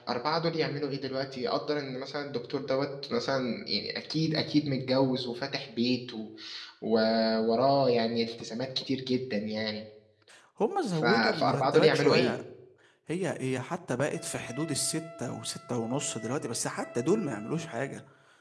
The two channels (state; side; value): identical; both; correlation 1.00